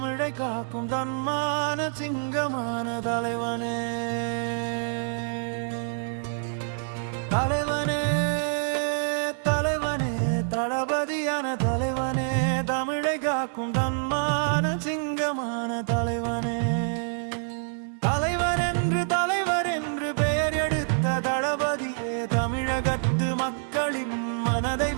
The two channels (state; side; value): silent; left; digital silence